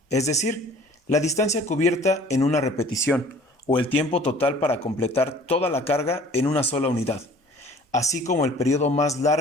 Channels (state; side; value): normal; both; correlation 0.50